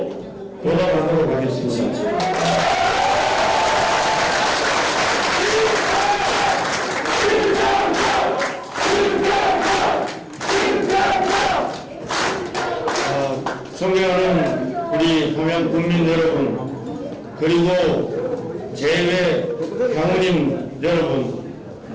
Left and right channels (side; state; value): both; identical; correlation 1.00